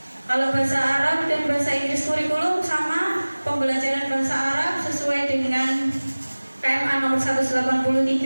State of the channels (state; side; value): inverted; both; correlation -1.00